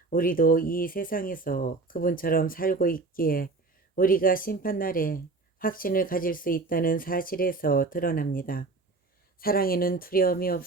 우리도 이 세상에서 그분처럼 살고 있기에 우리가 심판날에 확신을 가질 수 있다는 사실에서 드러납니다. 사랑에는 두려움이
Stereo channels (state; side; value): quieter; left; 3.7 dB